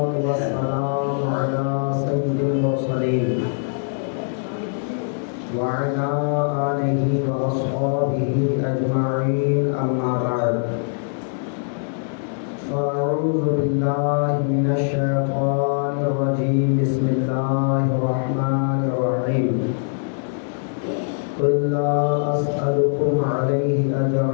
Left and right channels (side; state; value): right; silent; 64 dB below the other